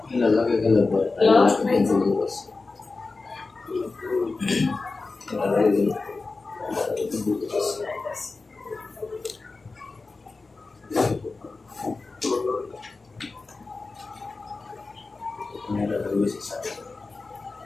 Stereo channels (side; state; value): right; quieter; 3.8 dB